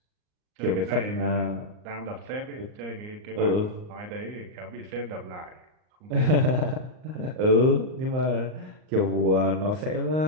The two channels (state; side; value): late; left; 38 ms